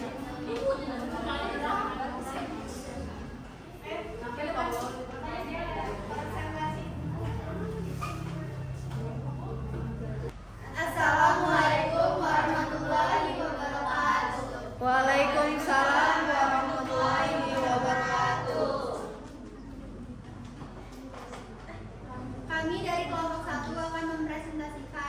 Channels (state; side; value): identical; both; correlation 1.00